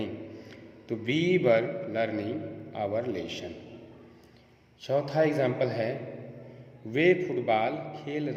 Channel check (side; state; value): both; identical; correlation 1.00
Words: तो be verb learning our lesson. चौथा एग्जाम्पल है वे फुटबॉल खेल